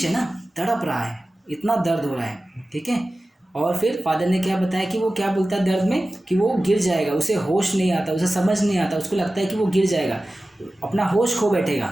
है ना, तड़प रहा है, इतना दर्द हो रहा है, ठीक है। और फिर फादर ने क्या बताया कि वो क्या बोलता है दर्द में कि वो गिर जाएगा, उसे होश नहीं आता, उसे समझ नहीं आता, उसको लगता है कि वो गिर जाएगा, अपना होश खो बैठेगा,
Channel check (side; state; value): both; normal; correlation 0.96